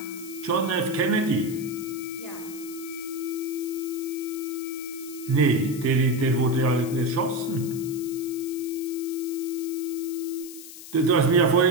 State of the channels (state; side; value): noise; left; hiss, 14 dB below the sound